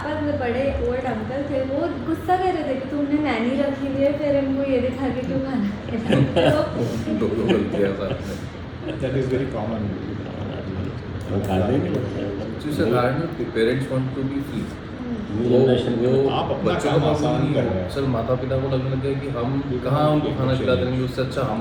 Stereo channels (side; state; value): both; identical; correlation 1.00